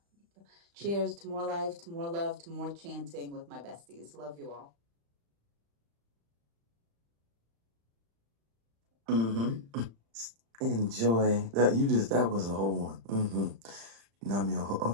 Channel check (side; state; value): left; late; 35 ms